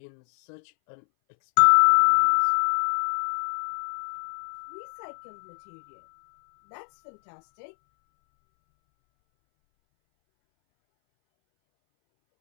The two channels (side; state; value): right; silent; 62 dB below the other